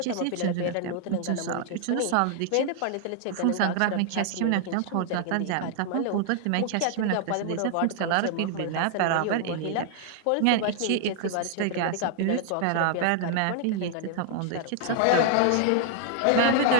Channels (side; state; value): both; different; correlation 0.00